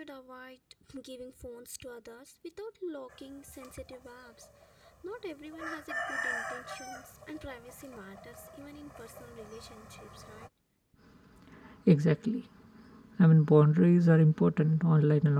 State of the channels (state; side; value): identical; both; correlation 1.00